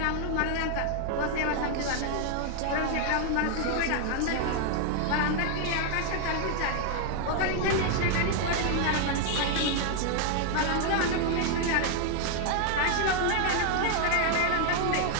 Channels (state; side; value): different; both; correlation 0.00